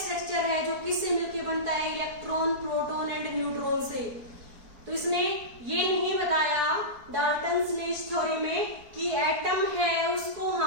स्ट्रक्चर है जो किससे मिलकर बनता है इलेक्ट्रॉन, प्रोटॉन एंड न्यूट्रॉन से। तो इसने ये नहीं बताया डाल्टन्स ने इस थ्योरी में कि एटम है उसको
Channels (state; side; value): late; left; 4.5 ms